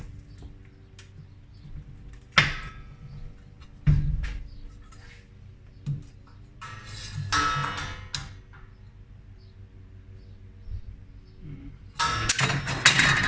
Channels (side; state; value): both; identical; correlation 1.00